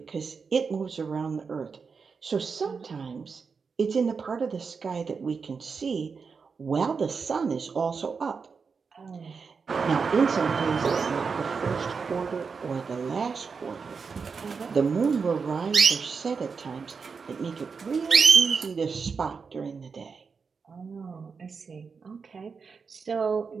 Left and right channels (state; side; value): quieter; left; 5.3 dB